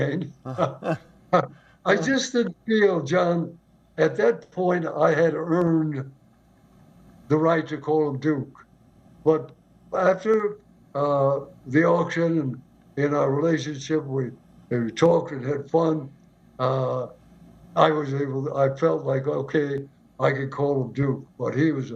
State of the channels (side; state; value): both; identical; correlation 1.00